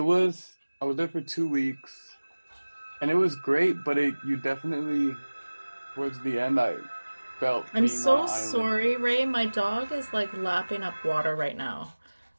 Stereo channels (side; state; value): both; inverted; correlation -1.00